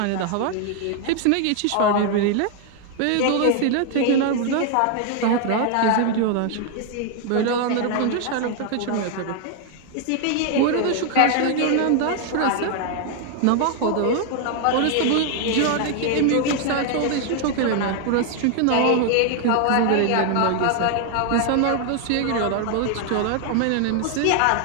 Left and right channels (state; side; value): different; both; correlation 0.00